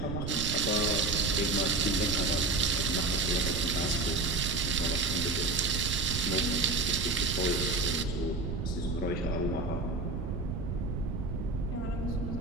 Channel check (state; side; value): noise; right; rumble, 3 dB below the sound